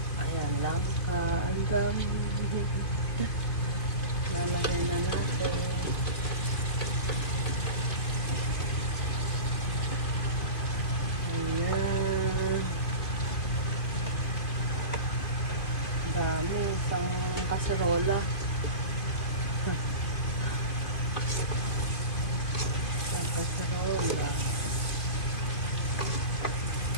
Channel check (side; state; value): right; late; 2.5 ms